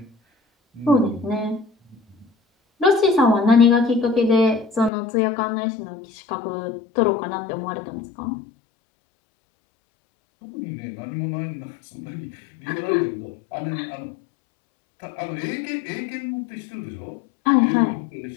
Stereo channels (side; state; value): right; drops out; at 4.9 s